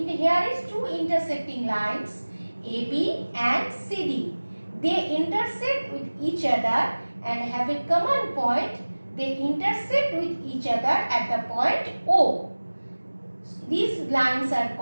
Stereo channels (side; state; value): both; inverted; correlation -1.00